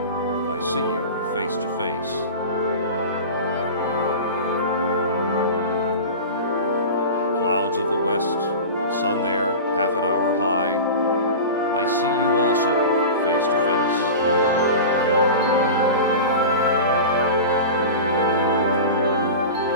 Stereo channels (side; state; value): both; inverted; correlation -0.30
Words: I see you face to face. Clouds of the west, sun there, half an hour high, I see you also face to face.